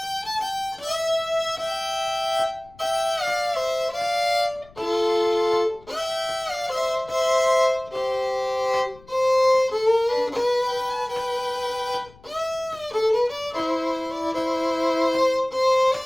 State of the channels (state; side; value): noise; left; rumble, 25 dB below the sound